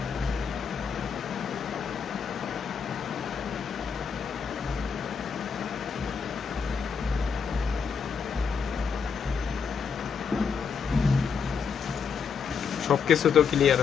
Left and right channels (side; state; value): right; quieter; 6.2 dB